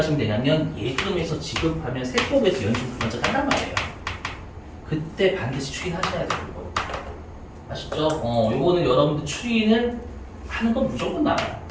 되냐면 예금에서 지급하면 세법에서 연충 먼저 한단 말이에요. 그때 반드시 추인하셔야 돼요. 이거. 아시죠? 요거는 여러분들 추인을 하는 건 무조건 나와요.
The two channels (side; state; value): both; identical; correlation 1.00